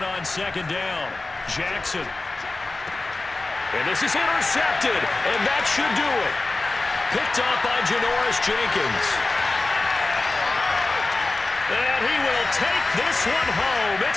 on 2nd down. Jackson. And this is intercepted, and that should do it. Picked off by Janoris Jenkins. And he will take this one home.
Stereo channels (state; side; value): quieter; right; 3.3 dB